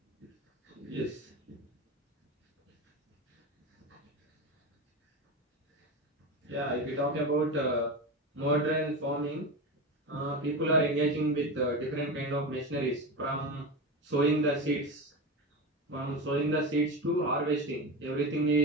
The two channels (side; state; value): both; normal; correlation 0.22